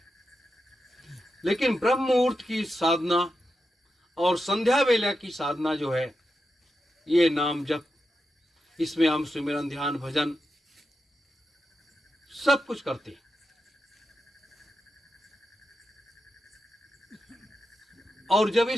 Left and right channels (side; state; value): both; normal; correlation 0.88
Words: लेकिन ब्रह्म मुहूर्त की साधना और संध्या वेला की साधना जो है, ये नाम जप, इसमें हम सुमिरन, ध्यान, भजन, सब कुछ करते हैं। और जब